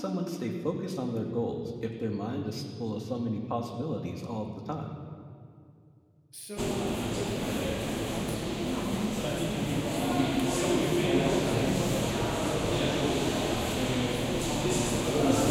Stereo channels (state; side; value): identical; both; correlation 1.00